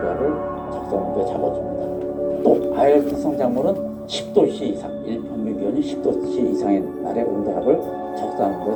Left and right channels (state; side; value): identical; both; correlation 1.00